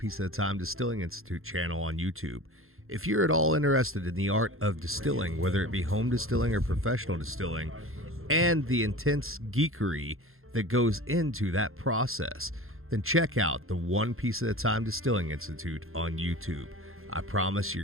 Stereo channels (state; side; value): late; left; 0.61 ms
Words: at a Time Distilling Institute channel on YouTube. If you're at all interested in the art of distilling, whether it be home distilling or professional distilling, and the intense geekery that goes into that process, then check out the One Piece at a Time Distilling Institute on YouTube. I promise